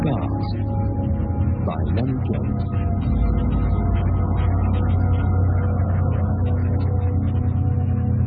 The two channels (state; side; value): identical; both; correlation 1.00